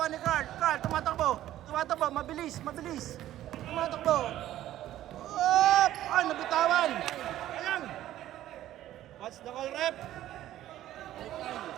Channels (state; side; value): quieter; left; 13.4 dB